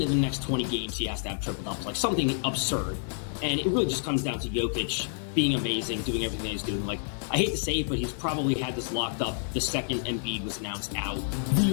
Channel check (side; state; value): right; silent; digital silence